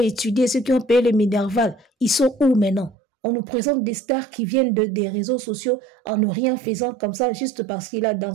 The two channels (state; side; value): drops out; left; at 3.0 s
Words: étudié, ceux qui ont payé le Minerval, ils sont où maintenant? On nous présente des stars qui viennent des réseaux sociaux en ne rien faisant comme ça, juste parce qu'il a